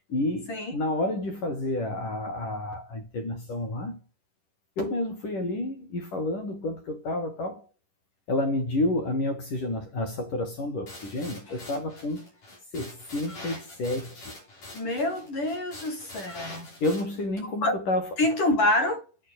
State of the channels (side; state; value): right; late; 10 ms